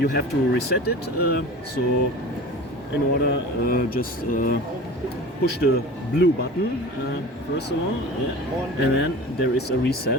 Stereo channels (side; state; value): both; normal; correlation 0.37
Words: have to reset it, so in order just push the blue button first of all, yeah. And then there is a